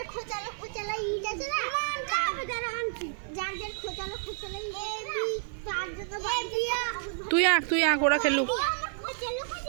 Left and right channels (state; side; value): silent; left; 58 dB below the other